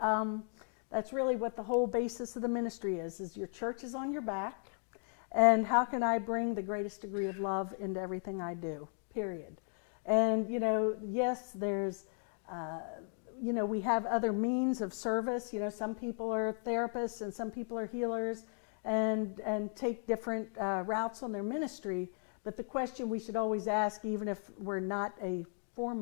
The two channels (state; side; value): silent; right; 54 dB below the other